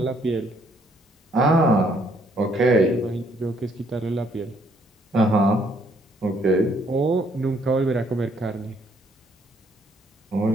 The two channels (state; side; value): normal; both; correlation 0.68